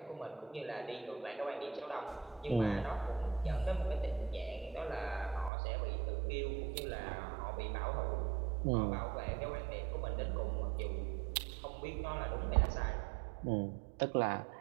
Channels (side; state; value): left; drops out; at 5.5 s